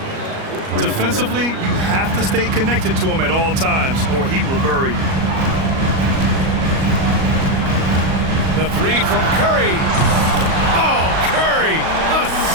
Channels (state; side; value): late; left; 37 ms